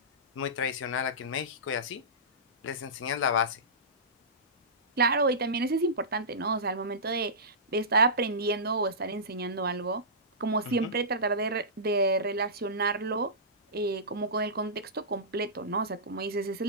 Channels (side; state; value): both; normal; correlation -0.20